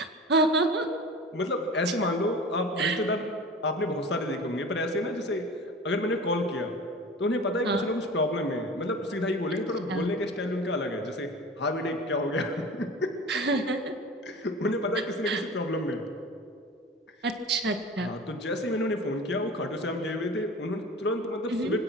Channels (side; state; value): both; normal; correlation 0.37